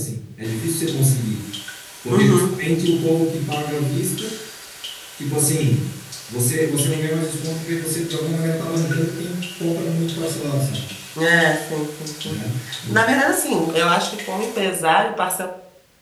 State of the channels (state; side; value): identical; both; correlation 1.00